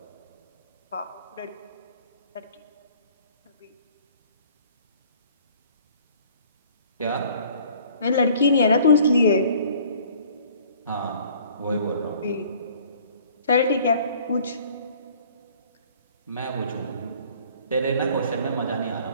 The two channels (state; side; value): inverted; both; correlation -0.54